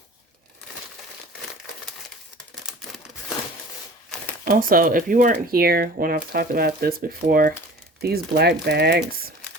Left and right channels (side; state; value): both; normal; correlation 0.43